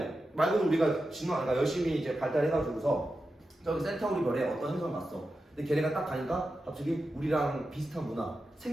말 그대로 우리가 진화가 열심히 이제 발달해가지고서 저기 센타우리 별에 어떤 행성을 갔어. 근데 걔네가 딱 가니까 갑자기 우리랑 비슷한 문화,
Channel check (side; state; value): both; normal; correlation 0.91